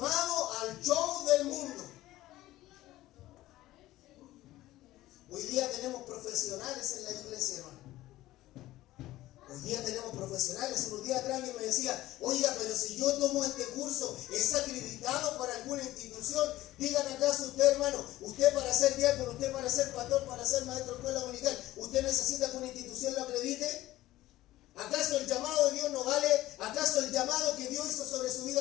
al show del mundo. Hoy día tenemos profesionales en la iglesia, hermano. Hoy día tenemos profesionales. Unos días atrás alguien me decía, oiga, pero si yo tomo este curso, ¿es acreditado para alguna institución? Dígame acaso usted, hermano, usted para ser diácono, usted para ser pastor, para ser maestro de escuela dominical, ¿usted necesita que una institución lo acredite? ¿Acaso el llamado de Dios no vale? ¿Acaso el llamado que Dios hizo sobre su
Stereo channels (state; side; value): quieter; right; 16.0 dB